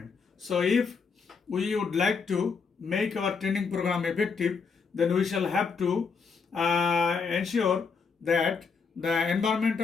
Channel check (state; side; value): quieter; right; 5.3 dB